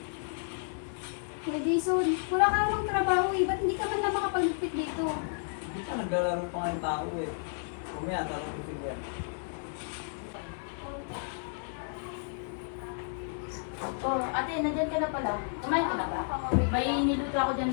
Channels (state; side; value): silent; right; digital silence